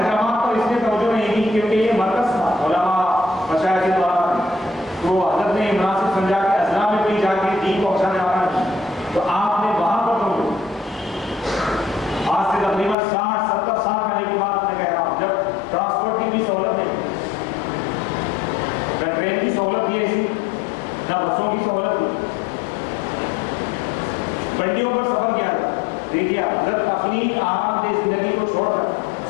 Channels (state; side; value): drops out; right; at 13.0 s